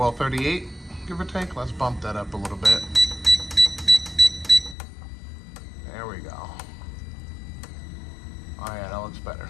give or take. Let's bump that up a little bit. There we go. Oh yeah, that looks better.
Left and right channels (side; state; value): right; drops out; at 4.8 s